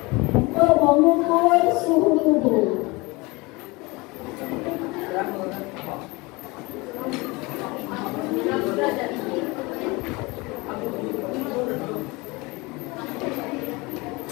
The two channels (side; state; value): right; quieter; 24.7 dB